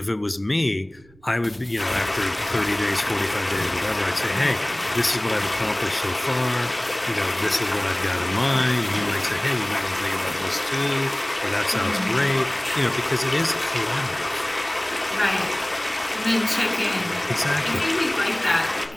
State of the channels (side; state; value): right; noise; rumble, 28 dB below the sound